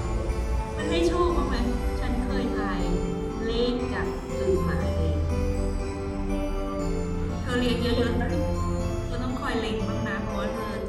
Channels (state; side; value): identical; both; correlation 1.00